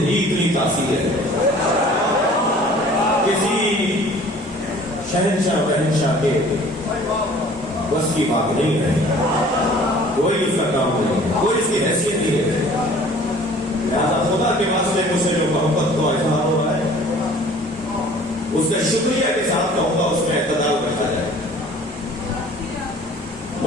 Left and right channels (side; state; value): both; normal; correlation 0.50